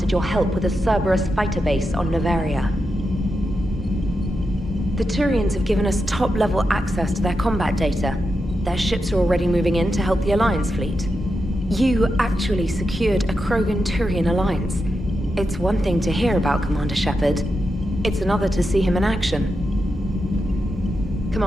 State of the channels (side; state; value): both; normal; correlation 0.87